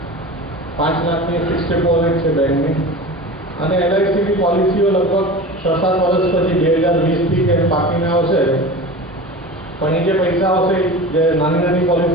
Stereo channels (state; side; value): normal; both; correlation 0.33